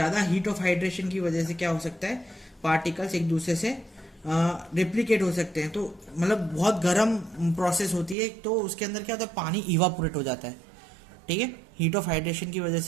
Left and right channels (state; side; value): drops out; left; at 8.2 s